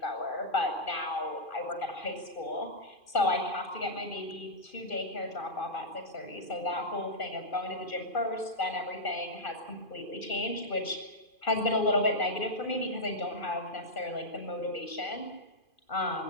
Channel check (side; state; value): right; late; 2.5 ms